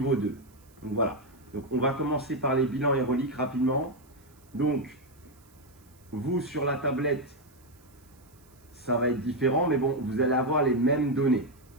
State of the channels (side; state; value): right; noise; hiss, 30 dB below the sound